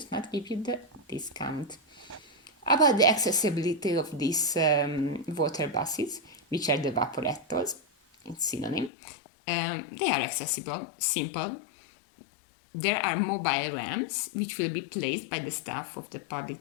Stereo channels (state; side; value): drops out; right; at 8.9 s